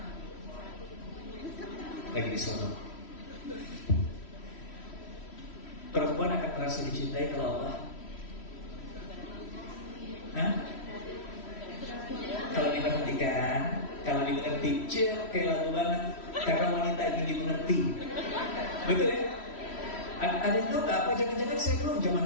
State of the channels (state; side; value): late; right; 3.1 ms